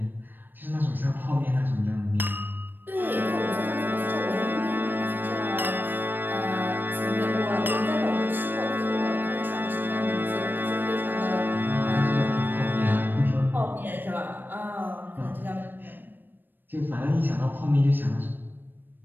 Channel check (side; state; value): left; late; 0.093 ms